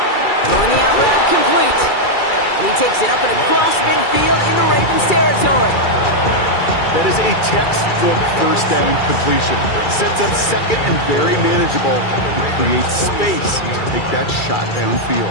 Throwing the out route complete. And he takes it up and across midfield into Ravens territory. That is a textbook 1st down completion. Sets up 2nd and very manageable. It creates space to take that shot downfield.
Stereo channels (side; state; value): right; late; 2.3 ms